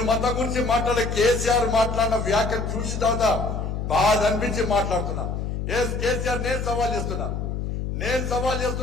మతం గురించి మాట్లాడే కేసీఆర్ మాట్లాడిన వ్యాఖ్యలు చూసిన తర్వాత బాధ అనిపించి మాట్లాడుతున్నా. కేసీఆర్ నేను సవాల్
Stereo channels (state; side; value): noise; left; hum, 3 dB below the sound